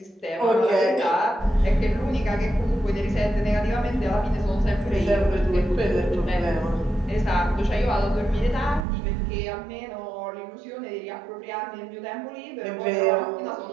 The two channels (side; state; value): left; drops out; at 8.8 s